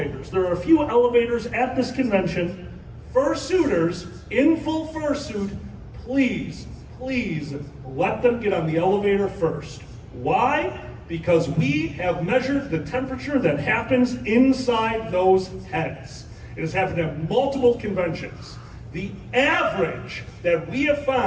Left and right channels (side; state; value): both; identical; correlation 1.00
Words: There are a few elevators at this convention. Fursuiters in full fursuit, please let them get on the elevator first. Why? Because we have measured the temperature that happens inside those heads. It has happened at multiple conventions. The average that we have